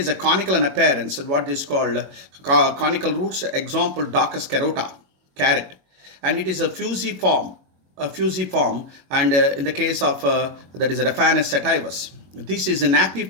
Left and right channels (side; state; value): left; late; 21 ms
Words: a conical in appearance, and what is called conical roots. Example, Docus carota, carrot, and it is a fusiform, and in the case of that is Raphanus sativus. This is an